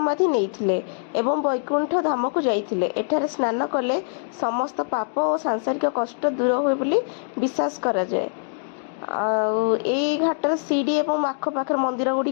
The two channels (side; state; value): right; silent; digital silence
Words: नहीं एवं वैकुंठ धाम को जाइथिले। एठारे स्नान कले समस्त पाप और सांसारिक कष्ट दूर हुए बोली विश्वास करा जाए। ए घाटर सीढ़ी एवं आखपाखर मंदिर